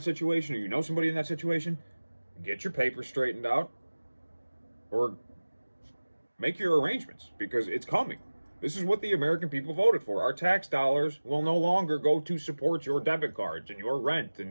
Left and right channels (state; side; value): inverted; both; correlation -1.00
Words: situation or you know somebody in that situation, get your papers straightened out or make your arrangements because it's coming. This is what the American people voted for. Our tax dollars will no longer go to support your debit cards and your rent